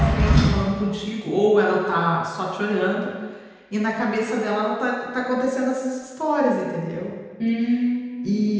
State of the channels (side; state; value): both; identical; correlation 1.00